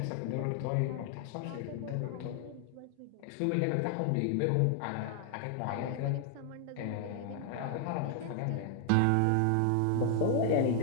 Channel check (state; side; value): different; both; correlation 0.00